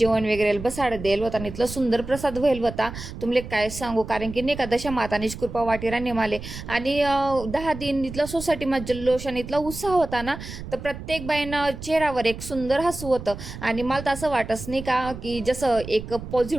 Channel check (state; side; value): noise; right; rumble, 11 dB below the sound